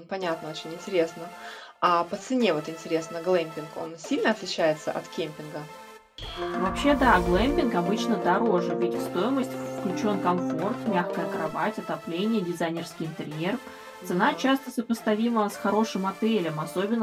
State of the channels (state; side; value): identical; both; correlation 1.00